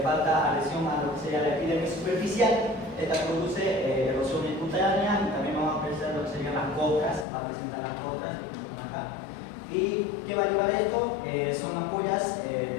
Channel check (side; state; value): right; drops out; at 7.2 s